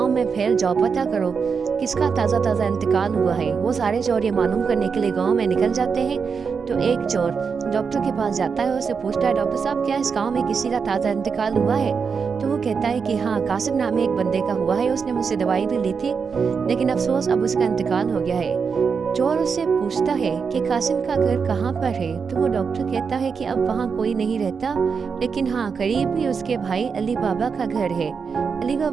में फैल जाओ, पता करो किसका ताज़ा ताज़ा इंतकाल हुआ है। वो सारे चोर ये मालूम करने के लिए गांव में निकल जाते हैं। तो एक चोर डॉक्टर के पास जाता है, उससे पूछता है डॉक्टर साहब क्या इस गांव में किसी का ताज़ा इंतकाल हुआ है? तो वो कहता है कि हाँ, कासिम नाम एक बंदे का हुआ है, उसने मुझसे दवाई भी ली थी, लेकिन अफसोस अब उसका इंतकाल हो गया है। चोर उससे पूछता है कि कासिम का घर कहाँ पर है? तो वो डॉक्टर कहता है कि अब वहाँ कोई नहीं रहता, लेकिन हाँ करीब ही उसके भाई अली बाबा का घर है। अली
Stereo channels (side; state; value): left; quieter; 5.8 dB